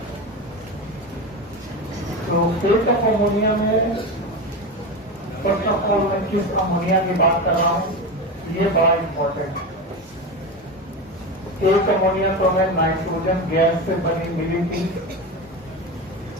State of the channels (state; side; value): normal; both; correlation 0.22